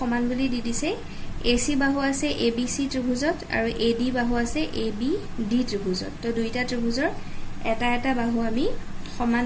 বুলি দি দিছে AC বাহু আছে ABC ত্ৰিভুজত আৰু AD বাহু আছে ABD ত্ৰিভুজত তো দুইটা ত্ৰিভুজৰ এটা এটা বাহু আমি সমান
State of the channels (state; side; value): identical; both; correlation 1.00